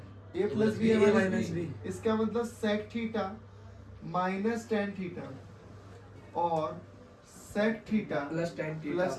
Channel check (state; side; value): identical; both; correlation 1.00